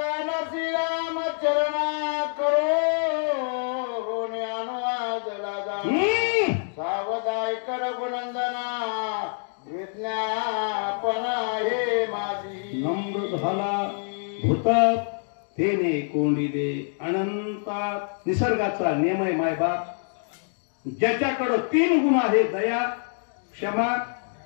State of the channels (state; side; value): silent; right; 60 dB below the other